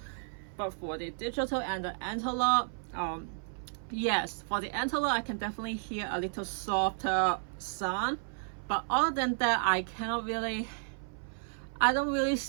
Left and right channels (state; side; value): silent; left; 56 dB below the other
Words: But for the digital and the analog, yes, for the analog I can definitely hear a little softer sound, but other than that I don't really